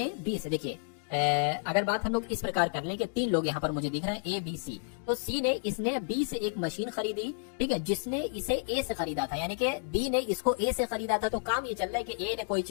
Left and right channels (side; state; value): right; silent; digital silence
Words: बी से, देखिए अगर बात हम लोग इस प्रकार कर लें कि 3 लोग यहाँ पर मुझे दिख रहे हैं, ए बी सी। तो सी ने, इसने बी से एक मशीन खरीदी। ठीक है, जिसने इसे ए से खरीदा था, यानी कि बी ने इसको ए से खरीदा था। तो काम ये चल रहा है कि ए ने कोई